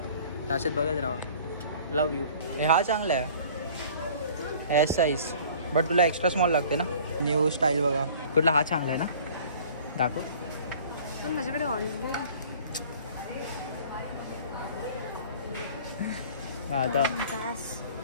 त्याच्यात बघत राहा. लव यू. हा चांगला आहे एस साईज बट तुला एक्स्ट्रा स्मॉल लागते ना. न्यू स्टाईल बघा. कुठला हा चांगला आहे ना. दाखव. माझ्याकडे आता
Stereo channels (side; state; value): both; inverted; correlation -0.49